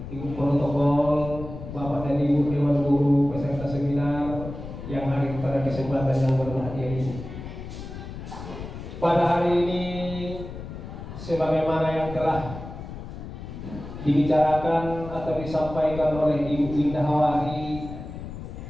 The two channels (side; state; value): left; noise; rumble, 10 dB below the sound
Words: Ibu Protokol, Bapak dan Ibu Dewan Guru peserta seminar yang hadir pada kesempatan yang berbahagia ini. Pada hari ini, sebagaimana yang telah dibicarakan atau disampaikan oleh Ibu Winda Hawari